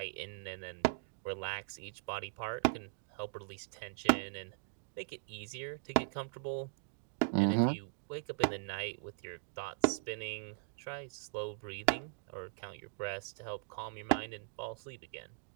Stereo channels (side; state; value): left; silent; digital silence